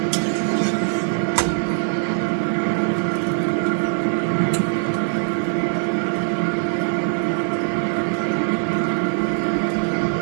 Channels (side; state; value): left; silent; 65 dB below the other